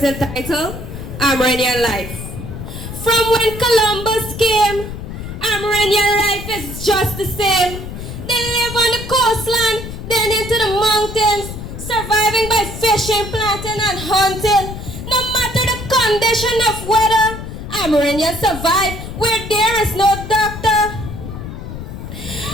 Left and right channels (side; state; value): left; noise; rumble, 9 dB below the sound